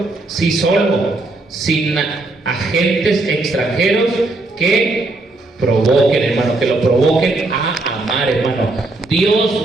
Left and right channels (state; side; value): quieter; left; 3.0 dB